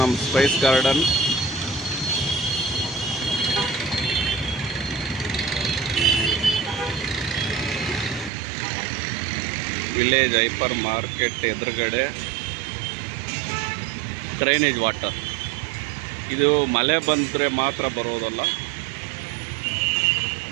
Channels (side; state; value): left; drops out; at 8.3 s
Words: spice garden. Village hyper market ಎದುರುಗಡೆ drainage water. ಇದು ಮಳೆ ಬಂದರೆ ಮಾತ್ರ ಬರೋದಲ್ಲ,